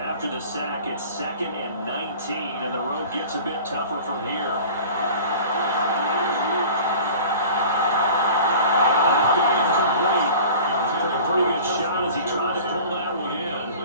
the sack, it's 2nd and 19, and the road gets a bit tougher from here. Incomplete. Took a pretty good shot as he tried to pull that one in.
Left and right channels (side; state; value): both; inverted; correlation -0.42